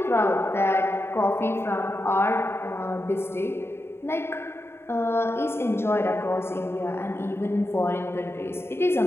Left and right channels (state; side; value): late; right; 0.12 ms